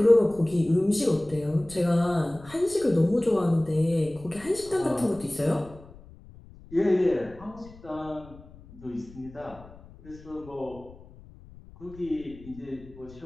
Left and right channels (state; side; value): noise; left; rumble, 20 dB below the sound